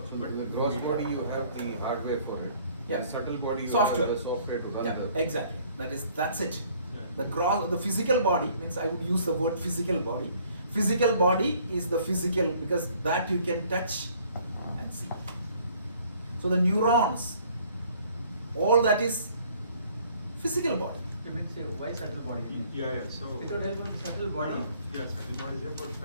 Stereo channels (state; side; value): inverted; both; correlation -0.58